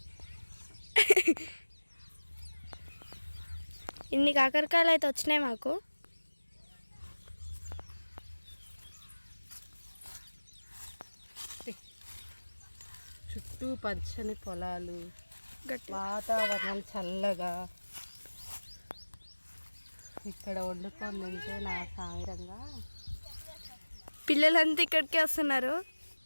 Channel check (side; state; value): both; inverted; correlation -1.00